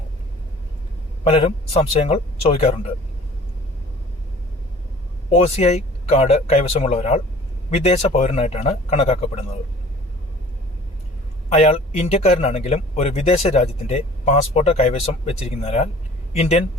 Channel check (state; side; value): normal; both; correlation 0.47